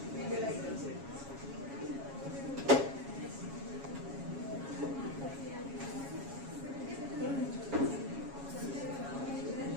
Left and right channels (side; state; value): left; late; 7.3 ms